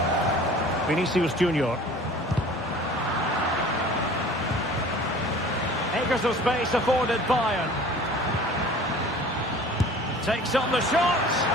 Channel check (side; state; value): both; normal; correlation 0.45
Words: Vinicius Junior. Acres of space afforded Bayern. Takes on the shot.